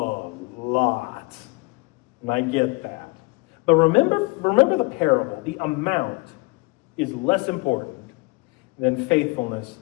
And I get that. But remember the parable. The amount is less important than faithfulness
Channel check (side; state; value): right; quieter; 26.2 dB